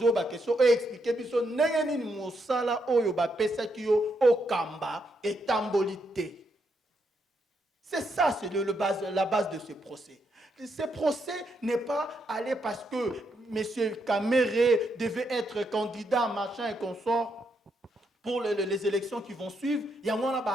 ba question, expliquer biso nengeni mosala oyo ba pesa kiyo okamba et tambolité. C'est ça, c'est la base de ce procès. Ce procès n'est pas allé parce que M. Kamere devait être candidat, machin et consort. Pour les élections qui vont suivre, il y a un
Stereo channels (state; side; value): normal; both; correlation 0.79